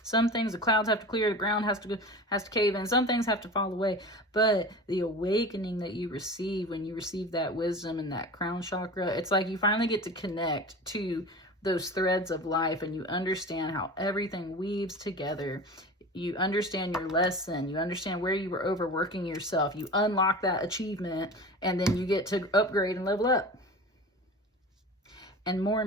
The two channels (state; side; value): normal; both; correlation 0.34